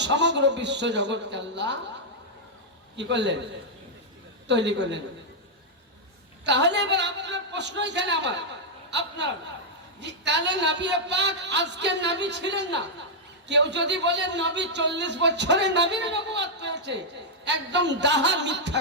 সমগ্র বিশ্ব জগৎকে আল্লাহ কি করলেন? তৈরি করলেন। তাহলে এবার আপনার প্রশ্ন এখানে আমার, আপনার, তাহলে নবী পাক আজকে নবী ছিলেন না? কেউ যদি বলে নবী 40 বছরে নবীর নবুয়ত পেয়েছে, একদম ডাহা মিথ্যা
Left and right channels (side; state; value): both; normal; correlation -0.04